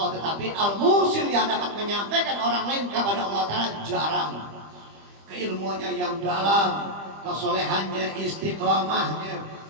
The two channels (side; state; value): left; late; 25 ms